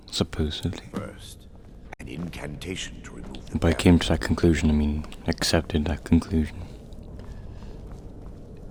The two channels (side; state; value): both; identical; correlation 1.00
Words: Supposedly. First, an incantation to remove the By came to that conclusion, I mean accepted that conclusion.